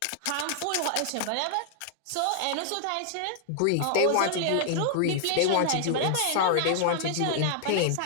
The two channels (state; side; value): different; both; correlation 0.00